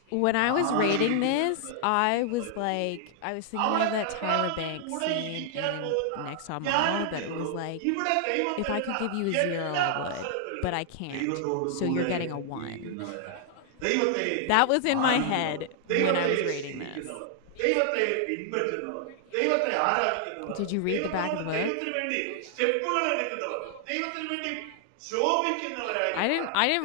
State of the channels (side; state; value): both; different; correlation 0.00